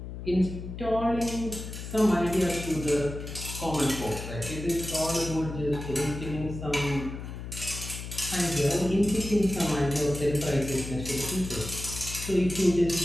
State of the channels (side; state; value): left; noise; hum, 9 dB below the sound